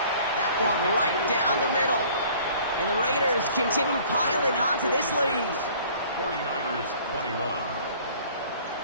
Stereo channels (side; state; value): both; inverted; correlation -0.52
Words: That one right down the middle. And the Raiders continue piling on to this lead. 49ers 21.